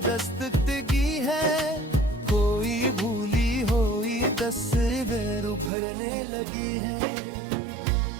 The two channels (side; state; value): left; drops out; at 5.7 s